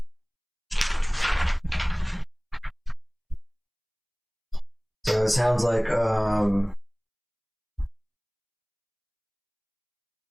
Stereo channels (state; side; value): identical; both; correlation 1.00